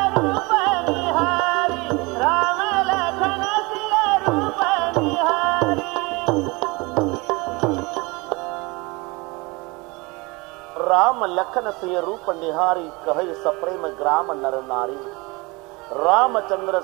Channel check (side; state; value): left; quieter; 25.7 dB